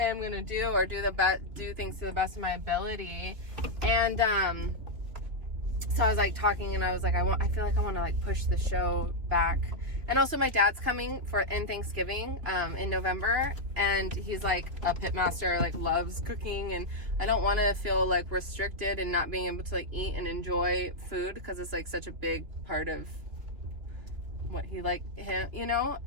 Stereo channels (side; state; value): left; late; 3.2 ms